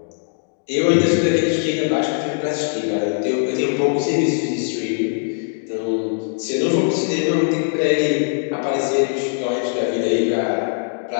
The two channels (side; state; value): right; silent; digital silence